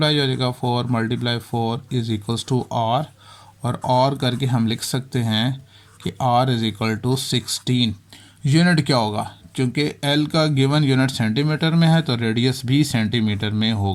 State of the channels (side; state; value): both; identical; correlation 1.00